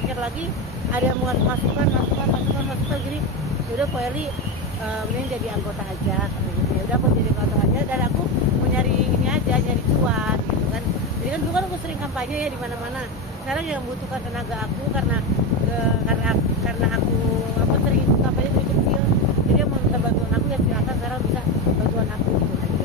lagi, ada yang masukan gini, yaudah Po Eli mending jadi anggota aja gitu. Ya udah aku jadi anggota aja, dan aku mau nyari ini aja, nyari cuan gitu kan. Jadi kan dulu kan aku sering kampanye ya di mana-mana. Sekarang yang membutuhkan tenaga aku karena aku sering ikut kampanye dari kecil. Jadi yang mau minta bantuan aku ya silakan, sekarang bisa bantuan aku gitu.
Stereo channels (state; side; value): normal; both; correlation 0.15